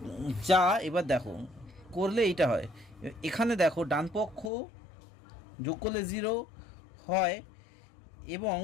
যা, এবার দেখো করলে এইটা হয়, এখানে দেখো ডান পক্ষ যোগ করলে 0 হয়, এবং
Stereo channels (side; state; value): right; drops out; at 4.5 s